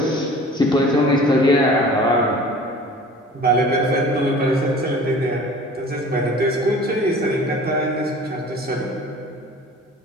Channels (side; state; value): both; normal; correlation 0.44